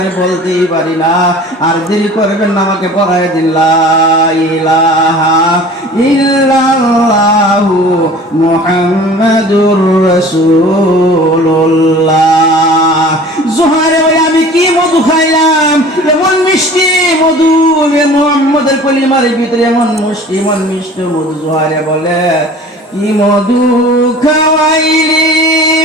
বলতেই পারি না। আর দেরি করবেন না, আমাকে পড়ায় দিন লা ইলাহা ইল্লাল্লাহু মুহাম্মাদুর রাসূলুল্লাহ। জুহাইরে বলে আমি কি মধু খাইলাম, এমন মিষ্টি মধু, মুহাম্মদের কলিমার ভিতরে এমন মুষ্টি, এমন মিষ্টি মধু। জুহাইরে বলে কি মধু খাওয়াইলি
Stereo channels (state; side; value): normal; both; correlation 0.44